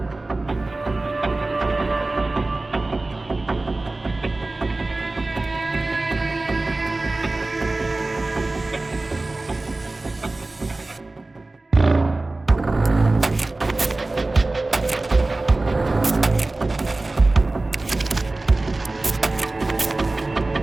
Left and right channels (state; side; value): quieter; left; 3.0 dB